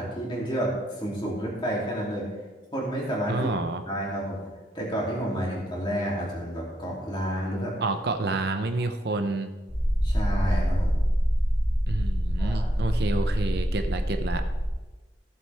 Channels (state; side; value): normal; both; correlation 0.77